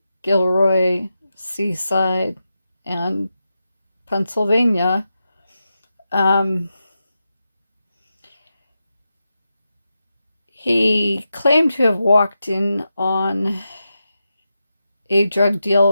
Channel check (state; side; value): inverted; both; correlation -0.89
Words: Gilroy, Seaside, and Pennsylvania. He claimed to have walked in on a drug